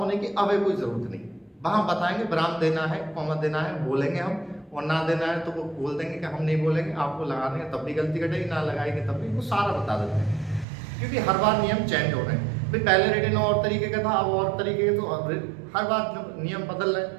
की अब कोई जरूरत नहीं। वहाँ बताएंगे विराम देना है, कॉमा देना है, बोलेंगे हम, और ना देना है तो वो बोल देंगे कि हम नहीं बोलेंगे, आपको लगा देंगे तब भी गलती कटेगी, ना लगाएंगे तब भी, वो सारा बता देते हैं। क्योंकि हर बार नियम चेंज हो रहे हैं, भाई पहले रिटन और तरीके का था अब और तरीके का, तो हर बार जब नियम बदल रहे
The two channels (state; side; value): drops out; left; at 10.7 s